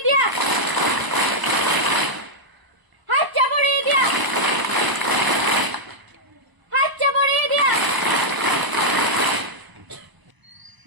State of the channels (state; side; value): late; left; 1.0 ms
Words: দিয়া, হাত চাপড়িয়ে দিয়া, হাত চাপড়িয়ে দিয়া।